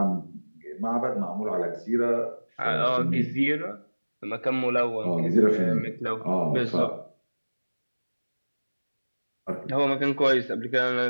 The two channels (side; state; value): both; inverted; correlation -1.00